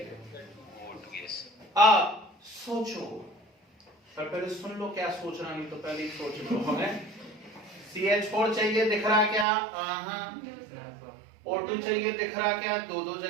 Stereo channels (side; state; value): left; drops out; at 9.5 s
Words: सोचो, पर पहले सुन लो क्या सोचना, नहीं तो पहले ही सोच लो। हमें CH4 चाहिए, दिख रहा क्या? O2 चाहिए, दिख रहा क्या? दो